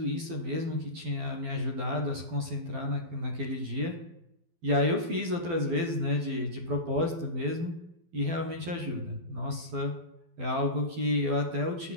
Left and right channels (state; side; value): late; left; 12 ms